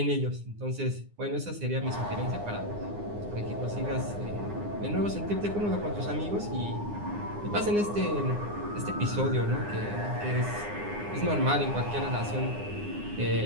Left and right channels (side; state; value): left; late; 9.7 ms